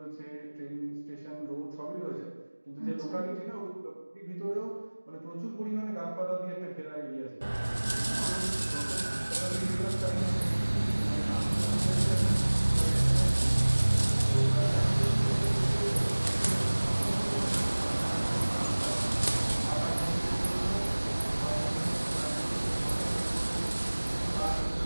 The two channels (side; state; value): both; inverted; correlation -1.00